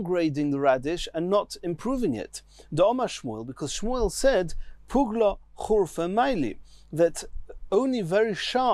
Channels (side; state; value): both; identical; correlation 1.00